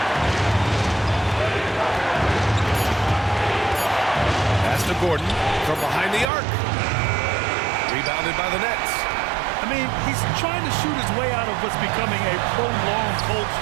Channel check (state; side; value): drops out; left; at 6.2 s